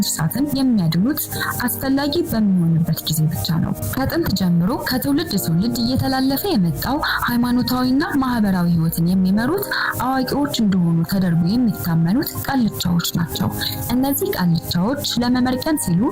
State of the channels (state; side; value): identical; both; correlation 1.00